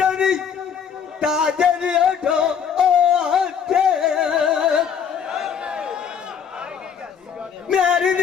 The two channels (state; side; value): quieter; right; 7.3 dB